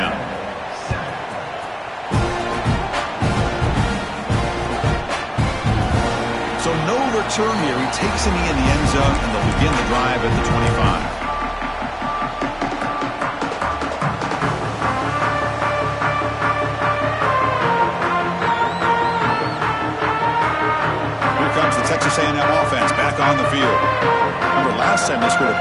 So no return here. He takes him in the end zone, and they'll begin the drive at the 25. Texas A&M offense back on the field. Remember, last time they scored a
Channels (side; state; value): both; identical; correlation 1.00